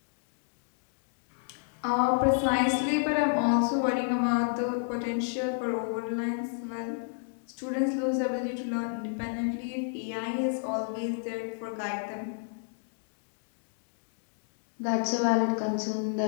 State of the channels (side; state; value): right; silent; digital silence